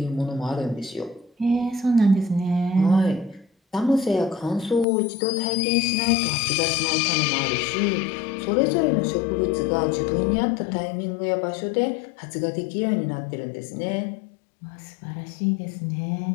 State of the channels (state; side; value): drops out; right; at 4.9 s